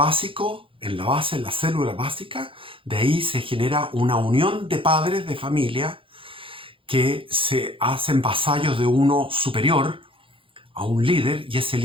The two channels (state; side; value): late; left; 0.25 ms